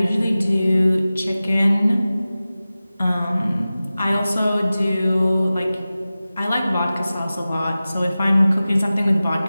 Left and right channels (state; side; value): inverted; both; correlation -0.96